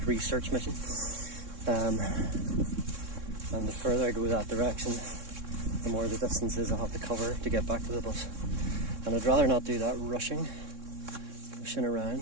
research mission. And the further I go that direction, the more the distances I'll have to cover to get back to the bus. And I'd rather not do that rushing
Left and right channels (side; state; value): left; late; 3.6 ms